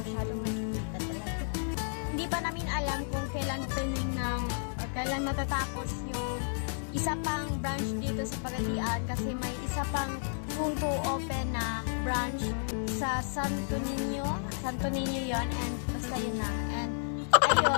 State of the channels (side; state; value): right; silent; 56 dB below the other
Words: nakikita talaga. Hindi pa namin alam kung kailan opening ng or kailan matatapos yung isa pang branch dito sa Pagadian kasi may isa pang soon to open na branch sa Santo Niño yon and basta yun na. And